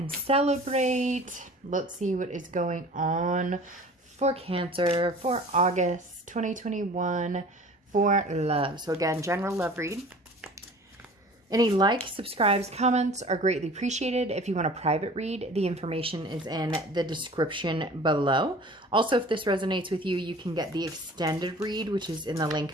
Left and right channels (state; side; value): normal; both; correlation 0.44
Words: celebrate. Let's see what is going on for Cancer for August 2021 for love. So again, general love read. Any likes, subscribes, comments are greatly appreciated. If you want a private read, the information is in the description below. Also, if this resonates with you, you can get the extended read, which is in the link